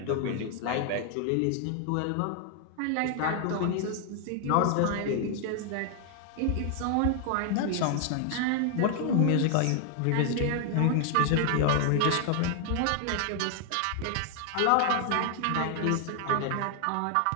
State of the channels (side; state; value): both; different; correlation 0.00